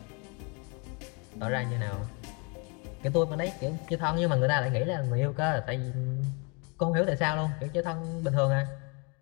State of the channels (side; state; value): right; quieter; 33.0 dB